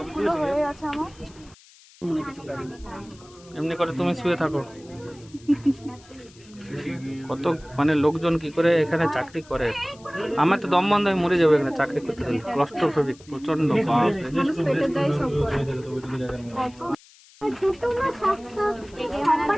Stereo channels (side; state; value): left; noise; hiss, 25 dB below the sound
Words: এমনি করে তুমি শুয়ে থাকো। কত মানে লোকজন কি করে এখানে চাকরি করে, আমার তো দম বন্ধ হয়ে মরে যাবে এখানে চাকরি করতে গেলে। ক্লস্ট্রোফোবিক প্রচন্ড।